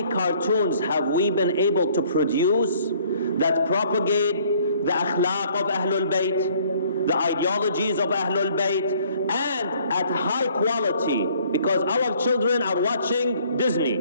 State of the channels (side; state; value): both; inverted; correlation -0.59